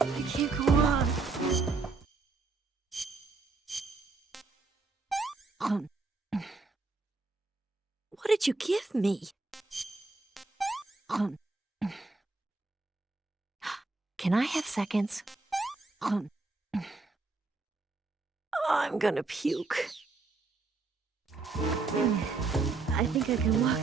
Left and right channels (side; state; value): left; quieter; 3.8 dB